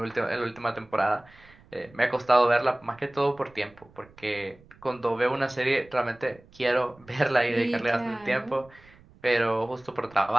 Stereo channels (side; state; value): right; noise; rumble, 26 dB below the sound